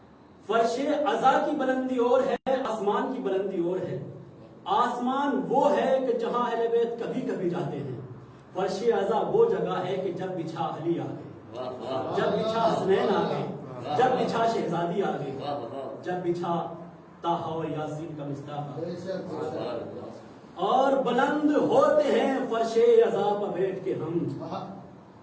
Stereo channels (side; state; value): both; identical; correlation 1.00